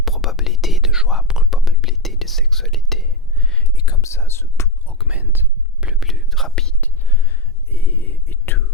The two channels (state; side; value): normal; both; correlation 0.11